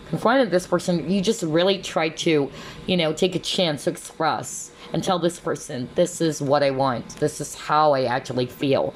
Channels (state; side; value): identical; both; correlation 1.00